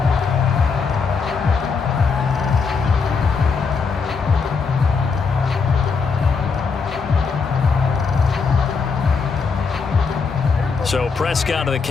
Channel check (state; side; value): quieter; right; 5.1 dB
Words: So Prescott and the